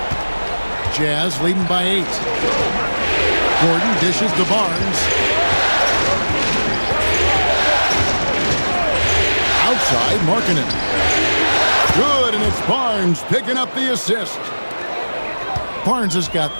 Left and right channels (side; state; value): both; inverted; correlation -1.00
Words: Jazz leading by 8. Gordon dishes to Barnes. Outside, Markkanen. Good, and it's Barnes picking up the assist. Barnes has got